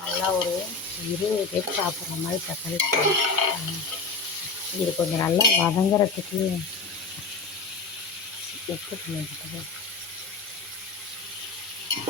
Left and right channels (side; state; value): right; quieter; 4.3 dB